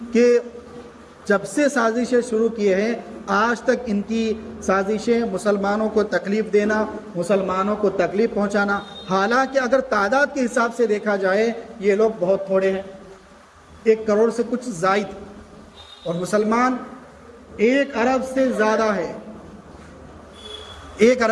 کہ جب سے سازشیں شروع کیے ہیں آج تک ان کی سازشیں مسلمانوں کو تکلیف دینا، مسلمانوں کو تکلیف پہنچانا، حالانکہ اگر تعداد کے حساب سے دیکھا جائے یہ لوگ بہت تھوڑے ہیں، 1 کروڑ سے کچھ زائد، اور مسلمان 1 ارب سے زیادہ ہے، 1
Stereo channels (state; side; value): identical; both; correlation 1.00